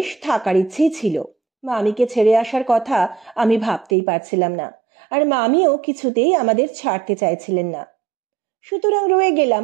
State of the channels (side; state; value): left; drops out; at 4.0 s